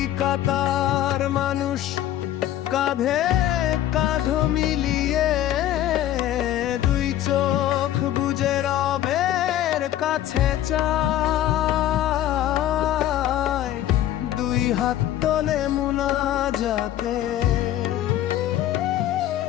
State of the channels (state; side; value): quieter; right; 12.5 dB